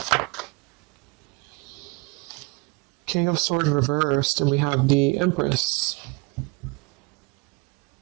King of Swords reversed, and we have the Empress.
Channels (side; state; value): left; quieter; 28.4 dB